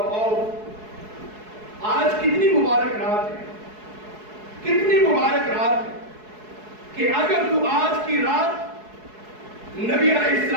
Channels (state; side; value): late; left; 4.7 ms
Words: آج کتنی مبارک رات ہے، کتنی مبارک رات ہے کہ اگر تو آج کی رات نبی علیہ